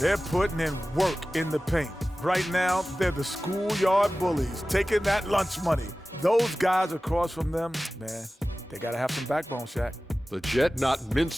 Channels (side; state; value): both; normal; correlation 0.96